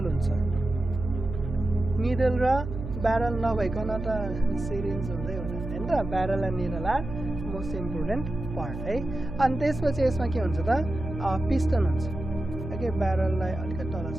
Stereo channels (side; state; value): right; noise; hum, 8 dB below the sound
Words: हुन्छ निडल र ब्यारल नभइकन त सिरिन्ज हुँदै हुँदैन हैन त barrel and needle are most important part है अनि त्यसपछि यसमा के हुन्छ त पिस्टन हुन्छ ओके ब्यारललाई अलिकति तल